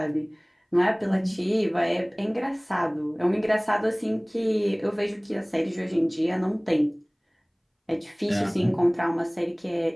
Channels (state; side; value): identical; both; correlation 1.00